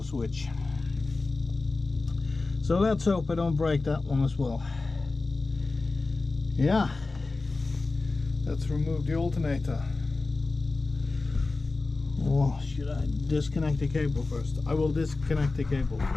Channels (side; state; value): right; quieter; 3.6 dB